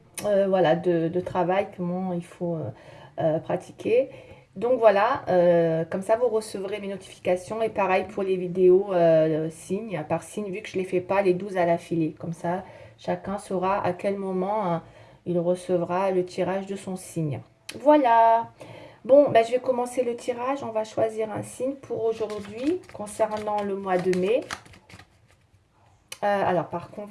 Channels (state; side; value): identical; both; correlation 1.00